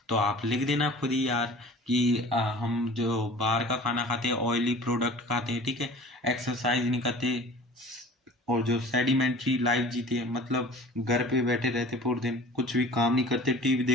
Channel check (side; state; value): both; normal; correlation 0.44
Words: तो आप लिख देना खुद ही यार कि हम जो बाहर का खाना खाते हैं, ऑयली प्रोडक्ट खाते हैं, ठीक है, एक्सरसाइज नहीं करते और जो सेडिमेंट्री लाइफ जीते हैं, मतलब घर पे बैठे रहते पूरे दिन, कुछ भी काम नहीं करते, टीवी